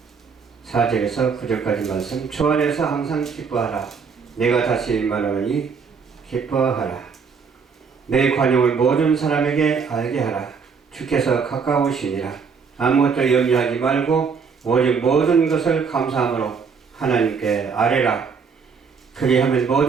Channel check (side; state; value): left; quieter; 5.7 dB